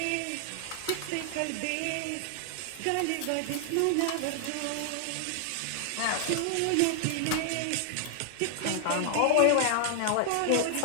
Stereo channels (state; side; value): different; both; correlation 0.00